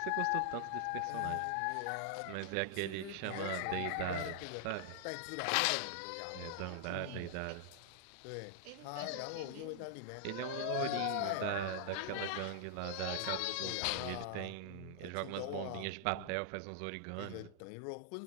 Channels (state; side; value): different; both; correlation 0.00